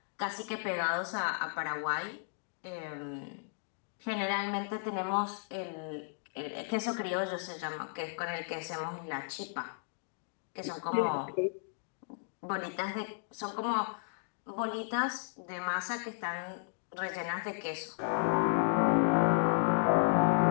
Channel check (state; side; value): silent; right; digital silence